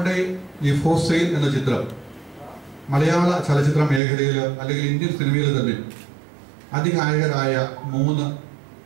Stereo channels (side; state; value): left; drops out; at 4.0 s